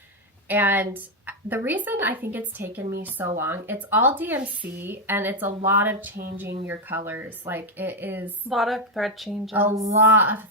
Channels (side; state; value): both; normal; correlation 0.05